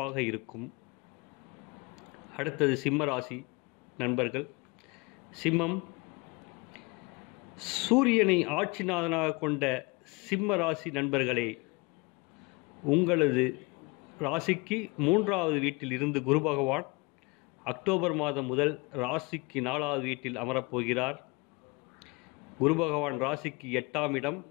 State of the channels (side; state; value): right; quieter; 27.2 dB